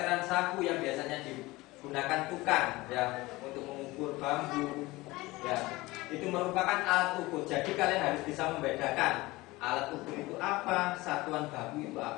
saku yang biasanya digunakan tukang ya untuk mengukur bambu. Ya, itu merupakan alat ukur. Jadi kalian harus bisa membedakan alat ukur itu apa, satuan baku itu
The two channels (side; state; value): right; quieter; 20.5 dB